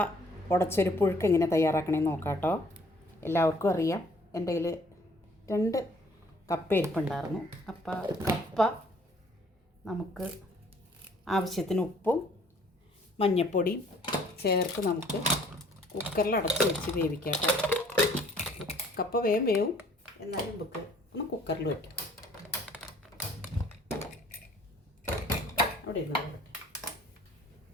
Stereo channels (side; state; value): both; normal; correlation 0.58